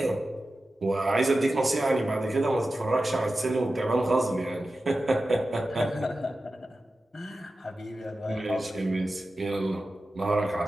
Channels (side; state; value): both; normal; correlation 0.93